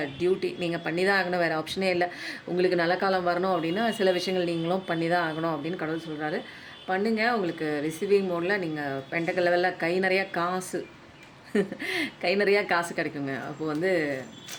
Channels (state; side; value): identical; both; correlation 1.00